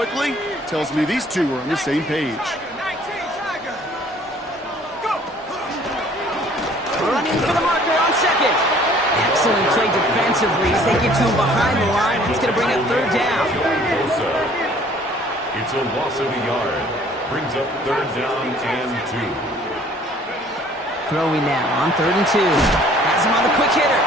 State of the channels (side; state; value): both; normal; correlation 0.56